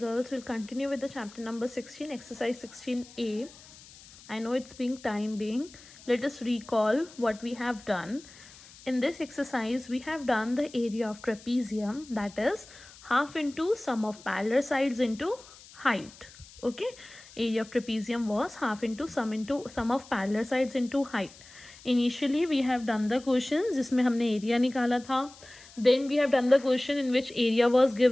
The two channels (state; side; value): noise; left; hiss, 21 dB below the sound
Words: girls, we'll continue with the chapter number 16, exercise 16a. I know it's being time being. Let us recall what we have done. In this exercise, we have done the area of trapezium, that is half into sum of parallel sides into height. Okay, area of trapezium was half into sum of parallel sides into height. Initially, we have done the questions जिसमें हमने area निकाला था. Then we have done the question in which area was